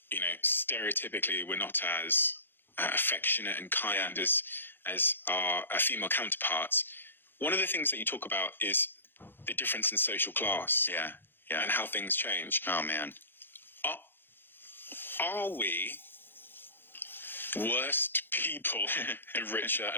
stereotypically, we're not as affectionate and kind as our female counterparts. One of the things that you talk about is the difference in social class. Yeah. Yeah. And how things change. Oh, man. Are we worst people the richer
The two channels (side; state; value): right; late; 0.10 ms